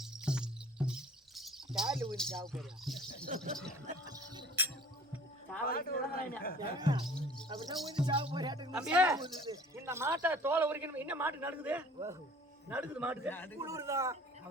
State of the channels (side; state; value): both; normal; correlation 0.49